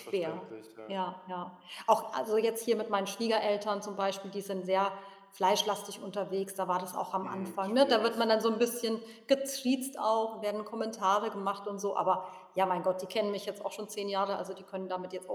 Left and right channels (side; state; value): both; identical; correlation 1.00